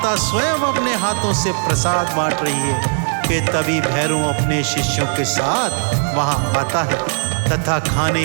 स्वयं अपने हाथों से प्रसाद बांट रही है कि तभी भैरव अपने शिष्यों के साथ वहां आता है तथा खाने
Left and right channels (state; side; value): silent; left; 66 dB below the other